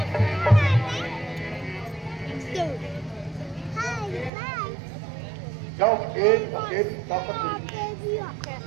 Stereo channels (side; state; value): left; drops out; at 4.3 s